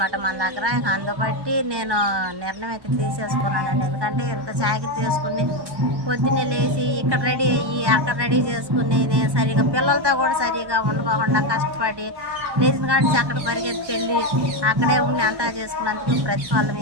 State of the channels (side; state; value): left; late; 1.1 ms